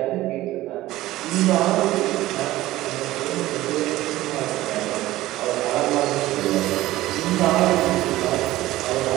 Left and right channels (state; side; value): quieter; left; 16.4 dB